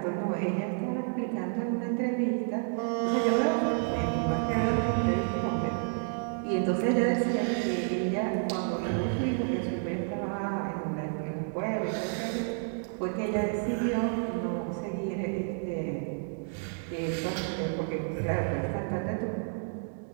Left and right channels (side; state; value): left; silent; 58 dB below the other